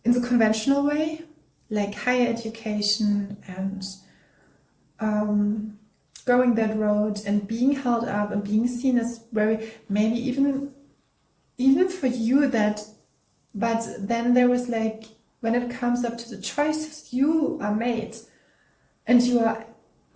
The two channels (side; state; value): both; identical; correlation 1.00